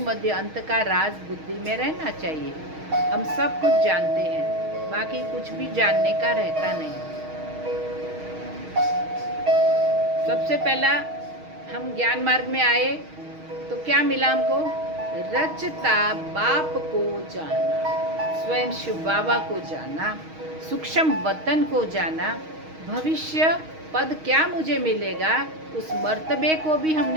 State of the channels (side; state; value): left; late; 6.4 ms